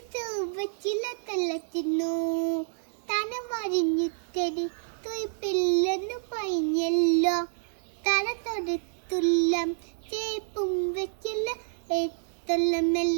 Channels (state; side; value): silent; left; digital silence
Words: വച്ചില തള്ളത്തിന്നു തന വരിഞ്ഞുത്തരി തുയ്പില്ലെന്നു പൈഞ്ഞല്ലോ തല തൊടുത്തുള്ളം ചേപ്പും വെച്ചില്ല